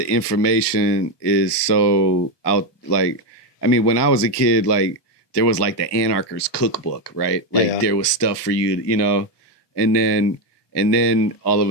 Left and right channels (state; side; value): late; right; 1.2 ms